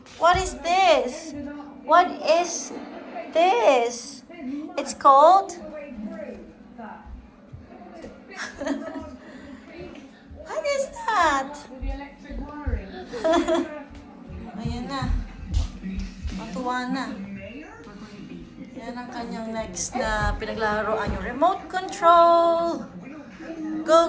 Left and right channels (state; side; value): identical; both; correlation 1.00